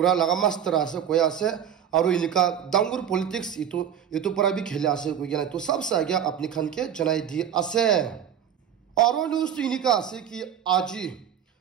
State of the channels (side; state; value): left; quieter; 9.0 dB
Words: लगा मास्टर आसे कोई आसे और इनका दांगुर पॉलिटिक्स ये तो पर भी खेले आसे कोई ना तो सबसे आगे अपनी खान के जनाई दी आसे और न्यूज तो इनका आसे कि आज